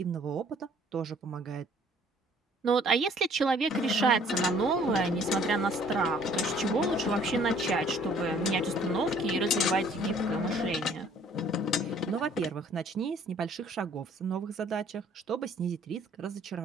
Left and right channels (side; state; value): both; normal; correlation 0.57